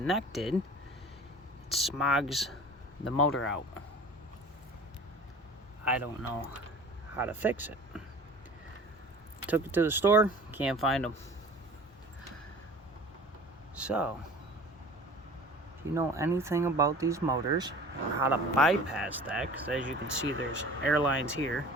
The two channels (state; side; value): normal; both; correlation 0.43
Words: it smogs the motor out. I don't know how to fix it. Took it to the store, can't find them. So, if you know anything about these motors or how to bypass that, because as you can see there's air lines here,